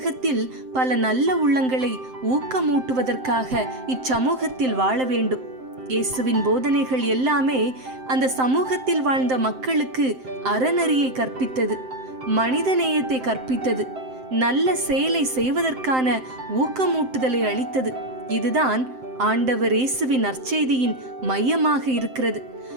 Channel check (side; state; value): left; late; 7.7 ms